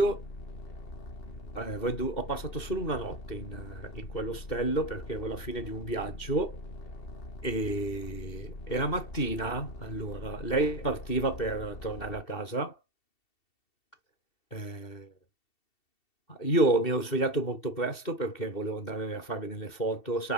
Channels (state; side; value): late; right; 2.7 ms